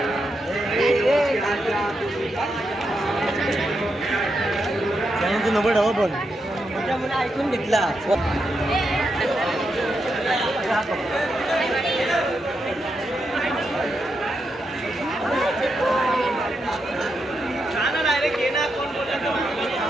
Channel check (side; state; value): both; normal; correlation 0.84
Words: तू नंबर हवा पण त्यामुळे ऐकून घेतला डायरेक्ट ये ना कोण